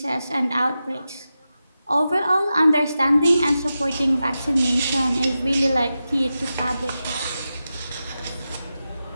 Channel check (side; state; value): both; inverted; correlation -0.91